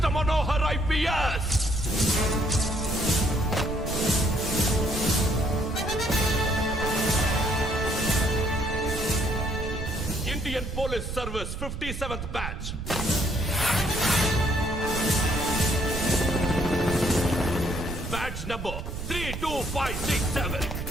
Manohar IPS. Indian police service 57th batch. Batch number 32567.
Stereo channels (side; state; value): right; noise; rumble, 6 dB below the sound